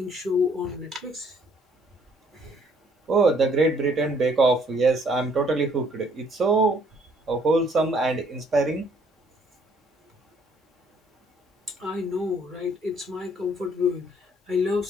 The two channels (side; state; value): both; normal; correlation 0.63